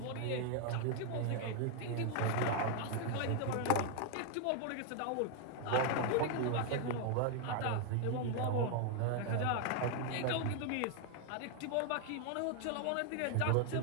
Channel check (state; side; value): different; both; correlation 0.00